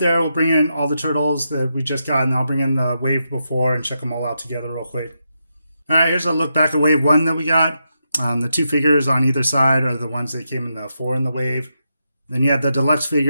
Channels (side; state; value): both; inverted; correlation -0.84